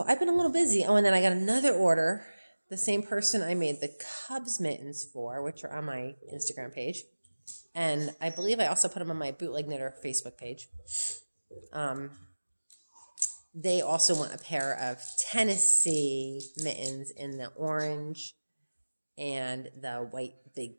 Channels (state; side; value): inverted; both; correlation -1.00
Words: I've been a little busy. Oh, and then I got another order. The same person I made the Cubs mittens for, which are on my Instagram page. And I believe I also put them on my Bootleg Knitter Facebook page. They also want a pair of Tennessee mittens in the orange and the white